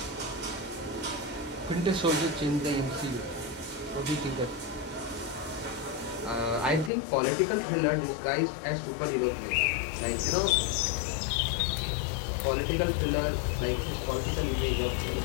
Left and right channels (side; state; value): right; drops out; at 6.9 s